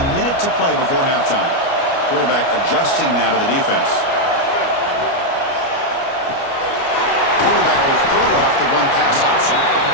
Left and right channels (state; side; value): late; right; 29 ms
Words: minute to play before halftime. Quarterback adjusting now to the defense. Quarterback will throw it off the run-pass option.